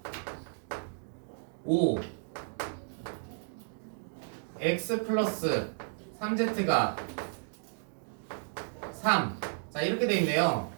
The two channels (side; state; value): left; silent; 56 dB below the other